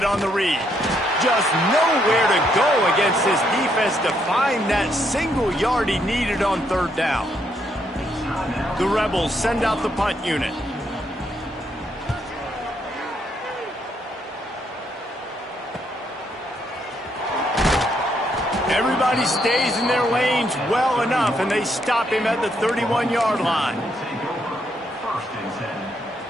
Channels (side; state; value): both; normal; correlation 0.75